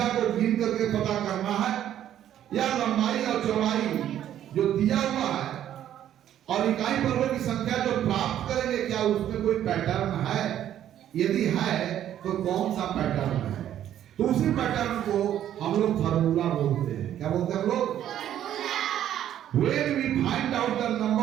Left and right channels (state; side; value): quieter; left; 11.1 dB